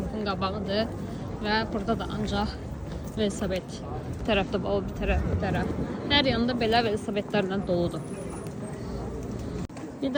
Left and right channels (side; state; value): both; identical; correlation 1.00